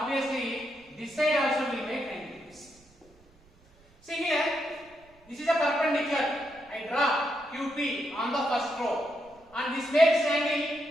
this side also will make 90 degrees. See here, this is a perpendicular. I draw QP on the first row, and this makes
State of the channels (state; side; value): noise; right; rumble, 29 dB below the sound